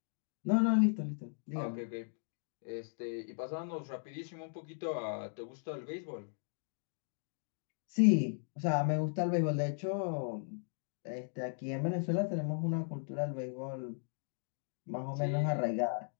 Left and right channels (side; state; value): right; silent; digital silence